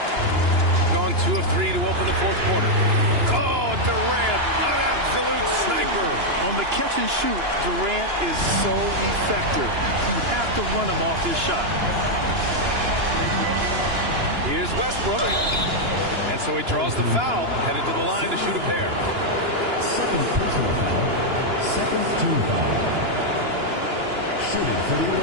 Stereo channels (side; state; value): left; late; 2.9 ms